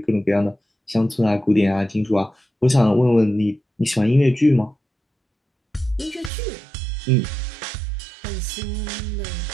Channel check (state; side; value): drops out; left; at 6.3 s